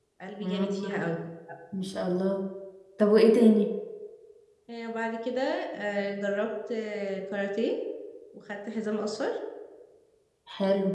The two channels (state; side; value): identical; both; correlation 1.00